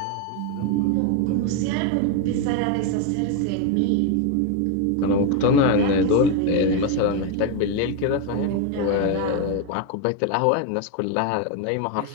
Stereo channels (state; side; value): different; both; correlation 0.01